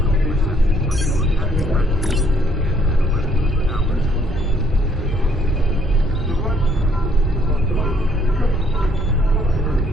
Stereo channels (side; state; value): both; normal; correlation 0.66